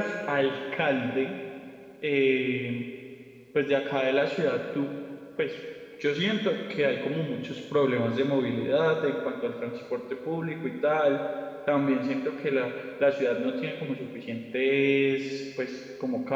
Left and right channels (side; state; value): both; identical; correlation 1.00